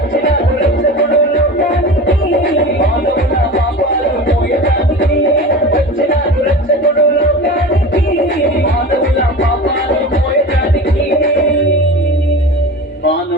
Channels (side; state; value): both; normal; correlation 0.33